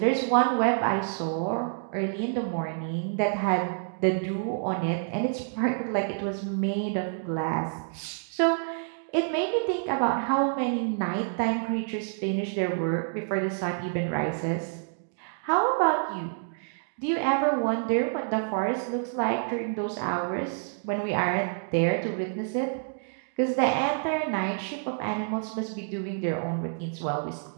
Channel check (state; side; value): silent; left; digital silence